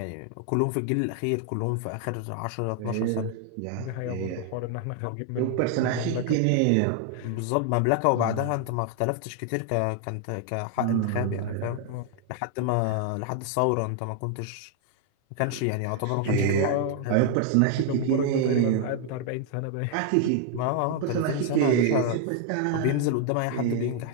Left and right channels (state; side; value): different; both; correlation 0.00